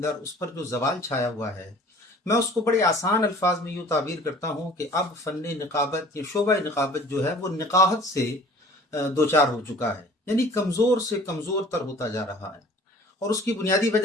उस पर जो ज़वाल छाया हुआ है, मैं उसको बड़े आसान अल्फाज में यूँ ताबीर करता हूँ कि अब फ़न निक़ाबत या शोबा निक़ाबत जो है वो निक़ाहत से दो चार हो चुका है, यानी कमज़ोर से कमज़ोर तर होता जा रहा है। और उसकी बुनियादी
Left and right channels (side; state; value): both; normal; correlation 0.48